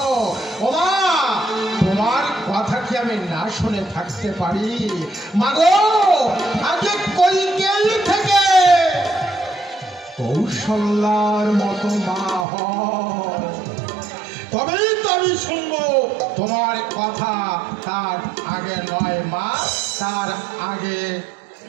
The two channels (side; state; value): left; drops out; at 12.5 s